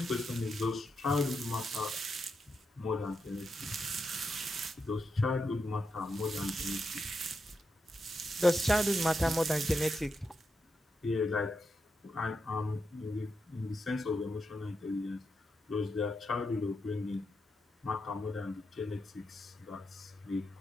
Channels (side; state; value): both; normal; correlation 0.85